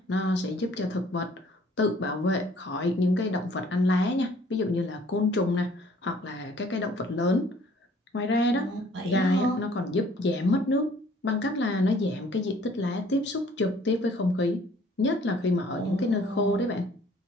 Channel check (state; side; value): normal; both; correlation 0.57